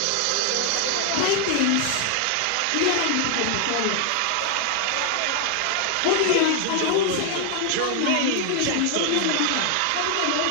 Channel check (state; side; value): different; both; correlation 0.00